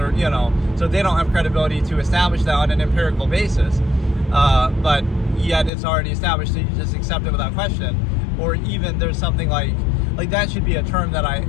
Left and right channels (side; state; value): right; drops out; at 5.7 s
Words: so they don't have credibility to establish that on an empirical basis. But yet it's already established, so you just accept it without question. Or even there's something like that should be a term that I